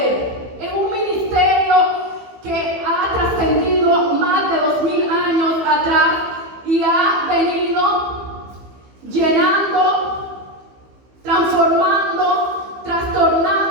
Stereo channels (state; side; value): late; left; 15 ms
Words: es un ministerio que ha trascendido más de 2000 años atrás y ha venido llenando, transformando,